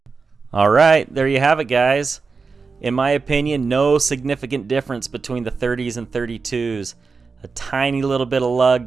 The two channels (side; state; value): left; quieter; 4.7 dB